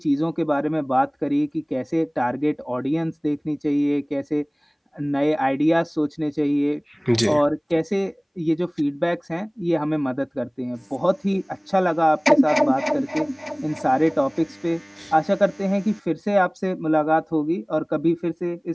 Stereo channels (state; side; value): identical; both; correlation 1.00